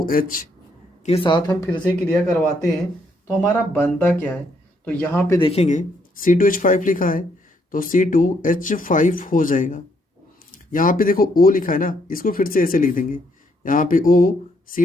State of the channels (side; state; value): both; normal; correlation 0.72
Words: के साथ हम फिर से क्रिया करवाते हैं, तो हमारा बनता क्या है, तो यहाँ पे देखेंगे C2H5 लिखा है तो C2H5 हो जाएगा। यहाँ पे देखो O लिखा है ना, इसको फिर से ऐसे लिख देंगे, यहाँ पे O